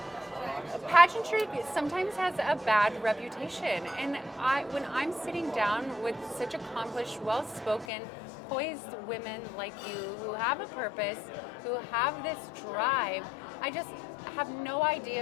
pageantry sometimes has a bad reputation. And when I'm sitting down with such accomplished, well-spoken, poised women like you who have a purpose, who have this drive, I just have no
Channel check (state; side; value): drops out; right; at 7.9 s